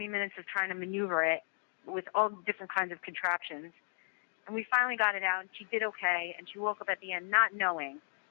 minutes of trying to maneuver it with all different kinds of contraptions. And we finally got it out, and she did okay, and she woke up at the end not knowing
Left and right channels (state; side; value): silent; right; 55 dB below the other